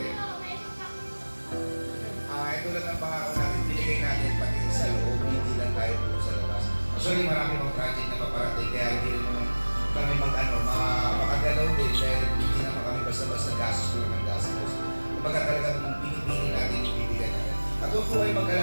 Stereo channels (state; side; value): inverted; both; correlation -1.00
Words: Tulad ng pangako natin, binigay natin pati sa loob, hindi lang tayo po sa labas. Actually, marami pang project na paparating, kaya hindi rin naman kami makagalaw din dahil hindi naman kami basta-basta gastos ko ng gastos. Kumbaga talaga nung pinipili natin, yung bibigyan natin. At huwag po kayo